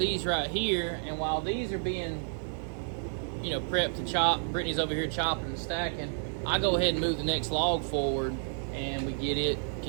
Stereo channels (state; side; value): silent; left; 57 dB below the other